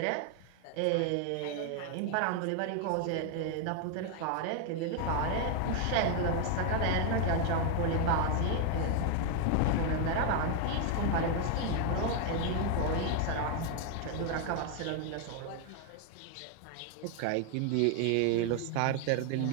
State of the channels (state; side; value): different; both; correlation 0.00